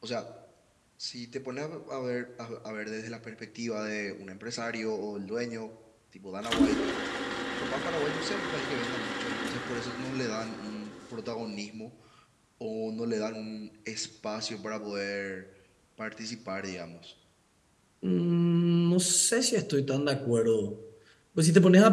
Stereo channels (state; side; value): identical; both; correlation 1.00